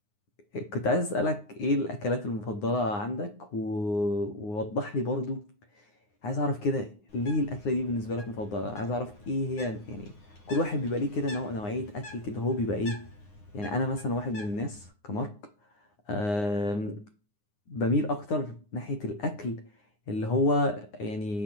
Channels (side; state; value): right; late; 9.7 ms